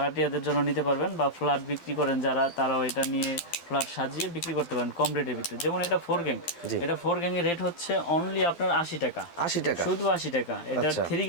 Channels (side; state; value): right; late; 12 ms